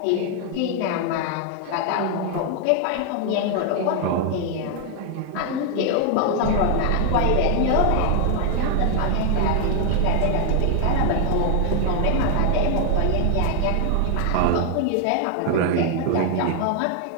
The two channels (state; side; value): different; both; correlation 0.00